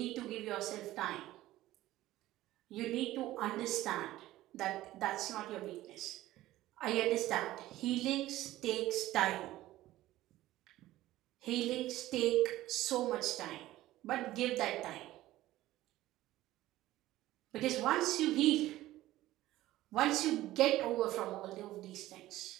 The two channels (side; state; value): left; quieter; 15.8 dB